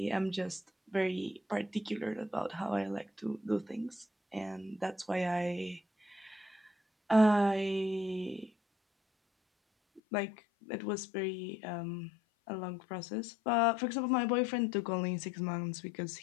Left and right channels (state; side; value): drops out; right; at 10.0 s